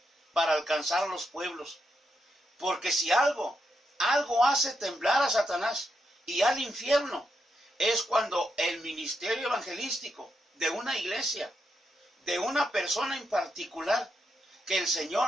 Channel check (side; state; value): both; normal; correlation 0.82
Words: para alcanzar los pueblos. Porque si algo hace temblar a Satanás y al infierno, es cuando el ministerio evangelístico de una iglesia, de una persona en particular, que el